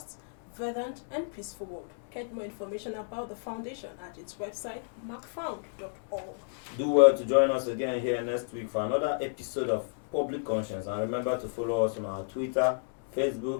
verdant, and peaceful world. Get more information about the foundation at its website, macfound.org. Do well to join us again here next week for another episode of Public Conscience. And remember to follow us on our Twitter,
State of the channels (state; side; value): silent; right; digital silence